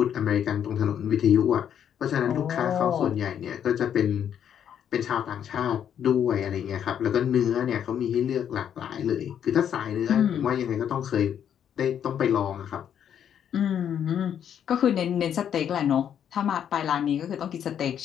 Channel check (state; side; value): quieter; right; 9.1 dB